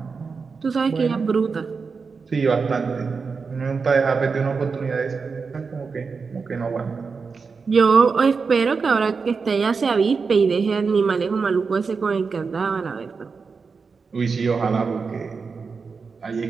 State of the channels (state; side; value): quieter; left; 5.0 dB